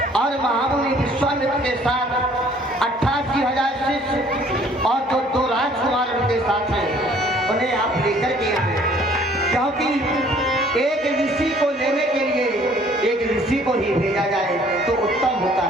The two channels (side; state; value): both; normal; correlation 0.57